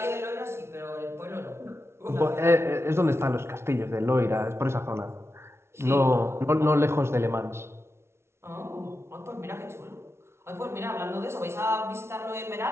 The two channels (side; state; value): left; late; 0.12 ms